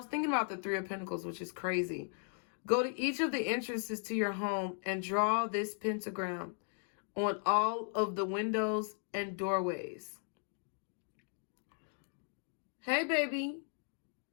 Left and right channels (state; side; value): silent; right; 53 dB below the other